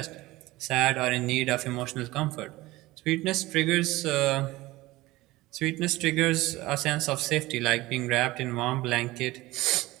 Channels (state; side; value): quieter; left; 19.0 dB